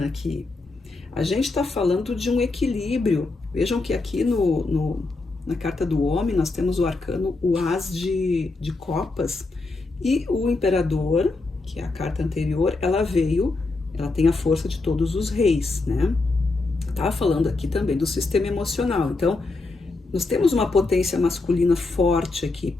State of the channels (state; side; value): quieter; right; 3.5 dB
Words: aqui. A gente está falando de um equilíbrio. Vejam que aqui na carta do homem, nós temos o arcano, o as de copas, e o imperador, que é a carta anterior, ela tem a força de todos os reis, né? Tá falando aqui também do sistema emocional. Então, nós temos uma potência masculina forte aqui.